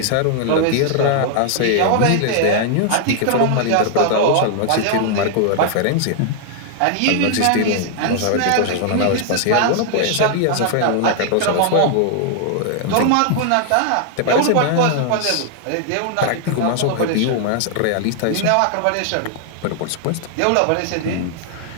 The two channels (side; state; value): both; different; correlation 0.00